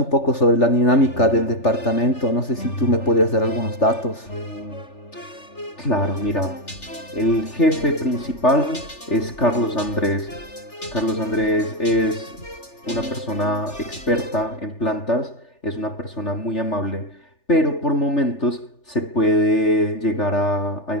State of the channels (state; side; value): late; right; 3.4 ms